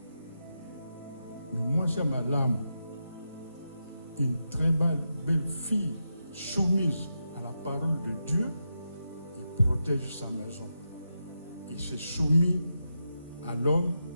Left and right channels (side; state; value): both; inverted; correlation -0.87